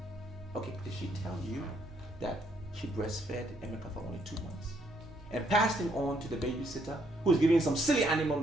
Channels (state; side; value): normal; both; correlation 0.71